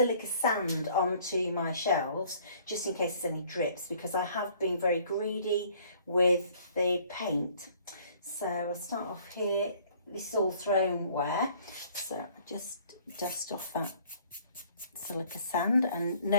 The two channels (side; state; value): both; inverted; correlation -0.58